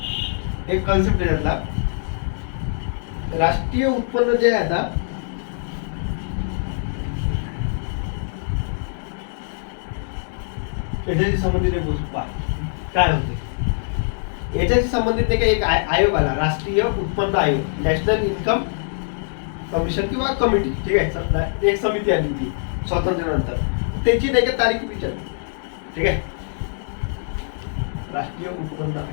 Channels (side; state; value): right; silent; digital silence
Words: एक कॉन्सेप्ट आहे त्यातला, राष्ट्रीय उत्पन्न जे आहे आता याच्याशी संबंधित एक गोष्ट पहा काय होते. याच्याशी संबंधित नाही का एक आयोग आला, राष्ट्रीय उत्पन्न आयोग, नॅशनल इन्कम कमिशन किंवा कमिटी, ठीक आहे, एक समिती आली ती स्वातंत्र्यानंतर, त्याची नाही का तारीख विचारली, ठीक आहे. राष्ट्रीय उत्पन्न